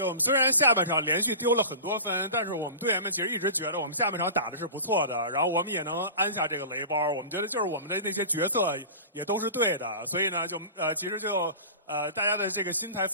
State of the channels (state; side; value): inverted; both; correlation -0.34